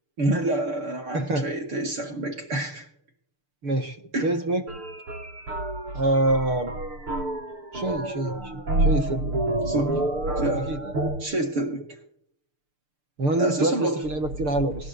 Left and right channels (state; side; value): late; left; 6.7 ms